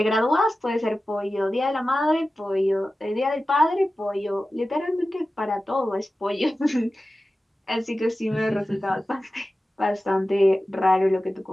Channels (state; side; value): normal; both; correlation 0.95